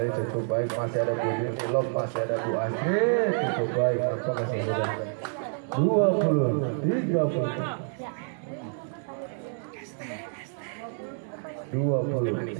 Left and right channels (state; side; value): silent; left; 59 dB below the other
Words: cukup baik masih ada Bu Yuni lob masih ada Bu Astrid cukup baik nampaknya saudara